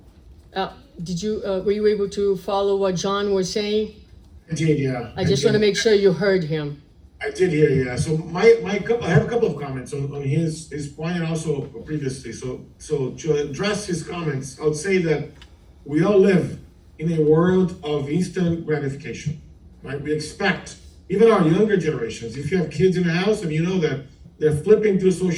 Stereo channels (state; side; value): identical; both; correlation 1.00